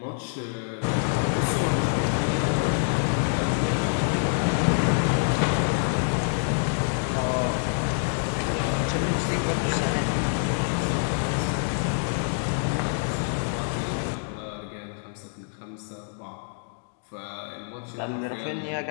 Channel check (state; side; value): silent; right; digital silence